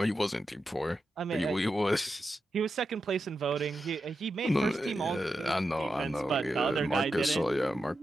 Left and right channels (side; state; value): both; normal; correlation 0.89